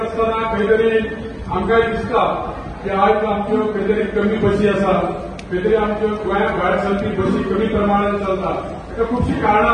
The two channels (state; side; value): identical; both; correlation 1.00